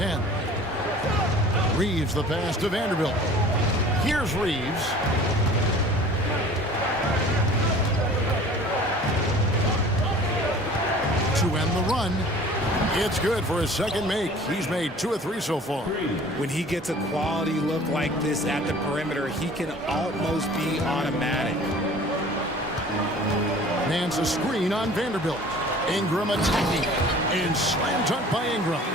Reeves the pass to Vanderbilt. Here's Reeves. To end the run. It's good for his second make. He's made 2 of 3 so far. When he gets a quality look like this at the perimeter, he can almost be automatic. Nance a screen on Vanderbilt. Ingram attacking. And slam dunk by Ingram.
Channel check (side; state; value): both; normal; correlation 0.46